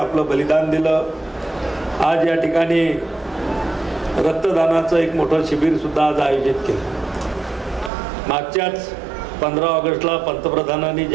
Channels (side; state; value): left; drops out; at 7.9 s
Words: बलिदान दिलं। आज या ठिकाणी रक्तदानाचं एक मोठं शिबिर सुद्धा आज आयोजित केलं। मागच्याच 15 ऑगस्टला पंतप्रधानांनी